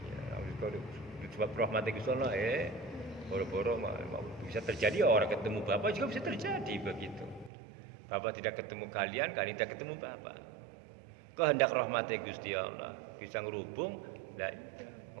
Ya, sebab rahmat Gusti Allah boro-boro bisa terjadi orang ketemu Bapak juga bisa terjadi begitu. Bapak tidak ketemu kalian tidak ketemu Bapak. Kehendak rahmat Gusti Allah bisa ngerubung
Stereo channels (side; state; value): left; drops out; at 7.5 s